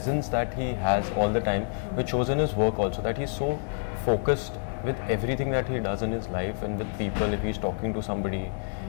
that he has all the time, which shows in his work also, that he's so focused with everything that he does in his life and with people, if he's talking to somebody,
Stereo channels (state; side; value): silent; right; 57 dB below the other